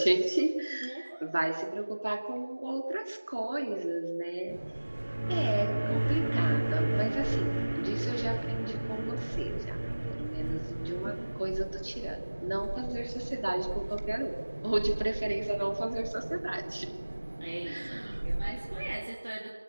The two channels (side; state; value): both; inverted; correlation -1.00